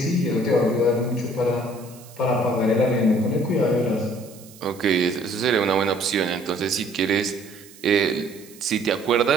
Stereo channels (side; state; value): right; noise; hiss, 22 dB below the sound